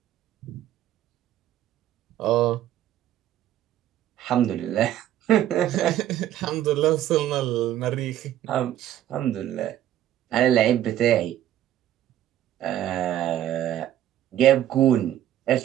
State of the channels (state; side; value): quieter; left; 12.1 dB